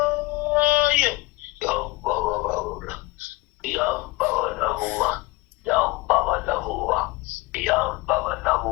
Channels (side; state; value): right; quieter; 21.9 dB